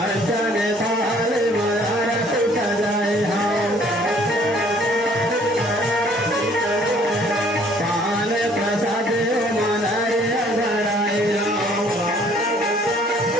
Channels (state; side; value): normal; both; correlation 0.59